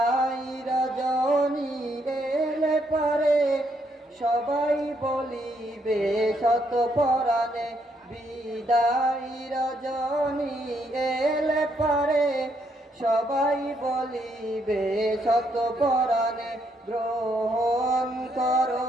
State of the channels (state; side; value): normal; both; correlation 0.74